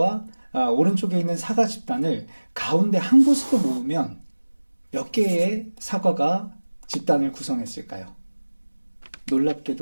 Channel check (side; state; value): both; inverted; correlation -1.00